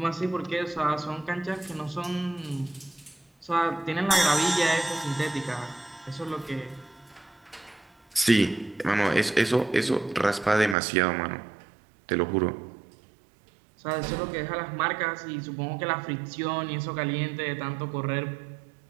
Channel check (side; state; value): left; drops out; at 10.8 s